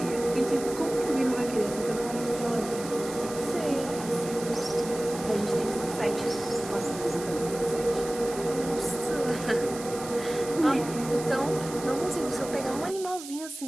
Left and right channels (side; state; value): right; noise; hiss, 12 dB below the sound